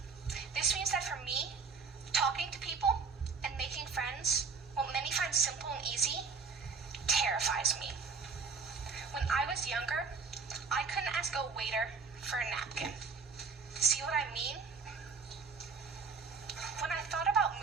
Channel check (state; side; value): quieter; left; 5.0 dB